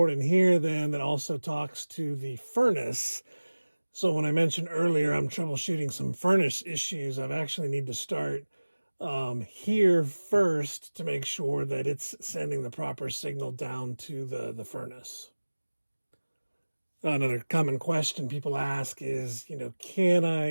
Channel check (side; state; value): both; inverted; correlation -1.00